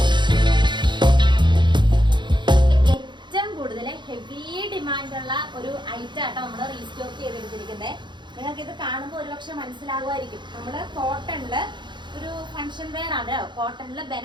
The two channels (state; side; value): late; left; 0.22 ms